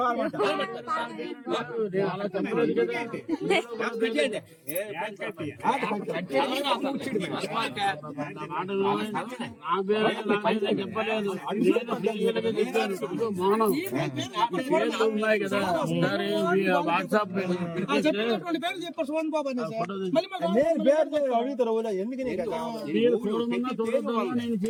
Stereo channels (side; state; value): both; identical; correlation 1.00